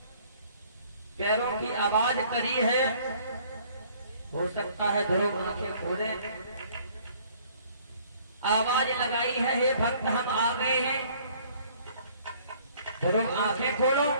पैरों की आवाज करी है। हो सकता है ध्रुव आंखें खोले, आवाज लगाई है, हे भक्त हम आ गए हैं। ध्रुव आंखें खोलो,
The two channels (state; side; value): inverted; both; correlation -0.58